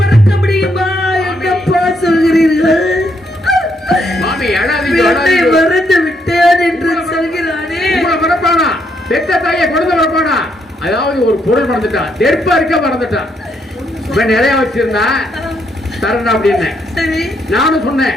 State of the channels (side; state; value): both; normal; correlation 0.75